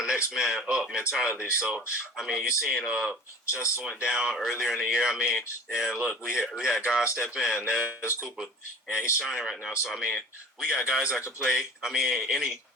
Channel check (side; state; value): both; normal; correlation 0.41